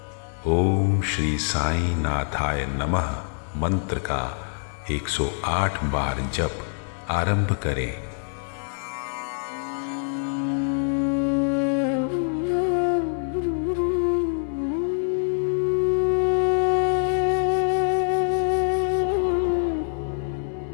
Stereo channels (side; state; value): right; silent; 62 dB below the other